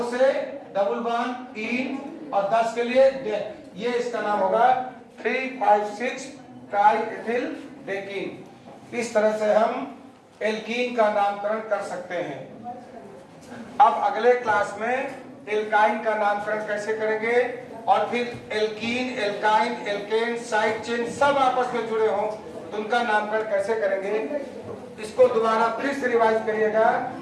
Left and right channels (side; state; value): both; identical; correlation 1.00